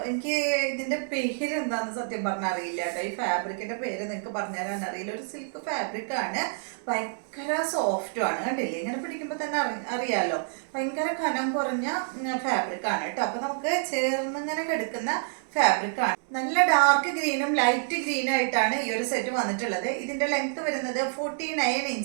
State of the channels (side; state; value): left; silent; digital silence